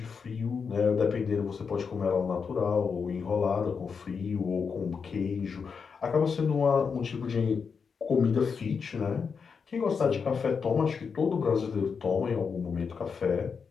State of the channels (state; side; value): quieter; right; 5.8 dB